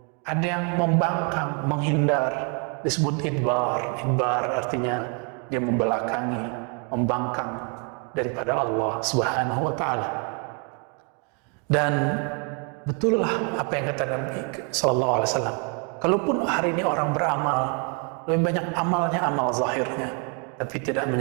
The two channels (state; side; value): quieter; left; 35.6 dB